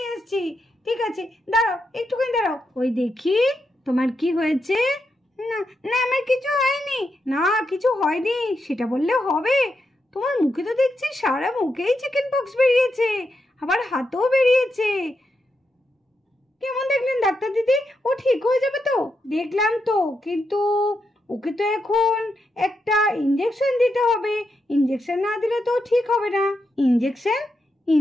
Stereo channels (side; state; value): both; normal; correlation 0.84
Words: এসেছি। ঠিক আছে, দাঁড়াও, একটুখানি দাঁড়াও। ওই দেখি তোমার কি হয়েছে। না না, আমার কিছু হয়নি। না, কিছু হয়নি সেটা বললে হবে? তোমার মুখে তো দেখছি সারা মুখেই চিকেন পক্স বেরিয়েছে, আবার হাতেও বেরিয়েছে। কেমন দেখলেন ডাক্তার দিদি? ও ঠিক হয়ে যাবে তো? দেখলাম তো, কিন্তু ওকে তো এখন একটা ইঞ্জেকশন দিতে হবে। ইঞ্জেকশন না দিলে তো ঠিক হবে না। ইঞ্জেকশন?